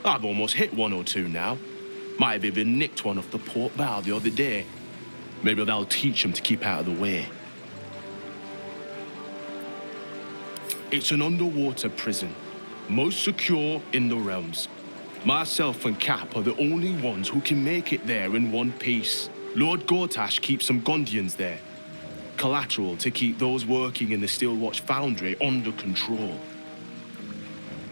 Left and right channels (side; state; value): both; inverted; correlation -1.00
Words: I've almost hit one or two now. Might have even nicked one off the port bow the other day. Maybe that'll teach them to keep out of the way. It's an underwater prison, most secure in the realms. Myself and Cap are the only ones who can make it there in one piece. Lord Gortash keeps some Gondians there. Collateral to keep those working in the Steelwatch Foundry under control.